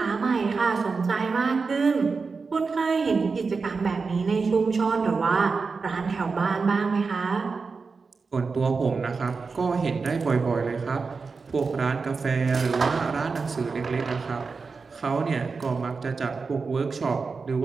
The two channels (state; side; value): quieter; left; 4.7 dB